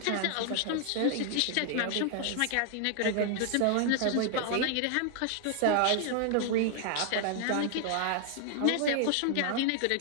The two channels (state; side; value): different; both; correlation 0.00